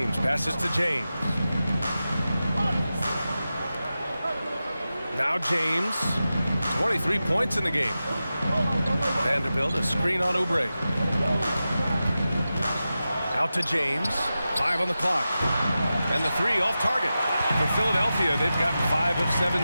passes to James. Now James. 23 points in the game. Vanderbilt, a screen on Oubre. Out to James. 5 on the clock. And the 3 off target. For Philadelphia, they've gotten 5 of 7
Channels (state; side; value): inverted; both; correlation -0.93